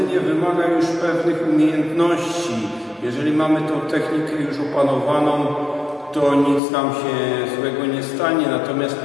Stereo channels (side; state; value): right; drops out; at 6.6 s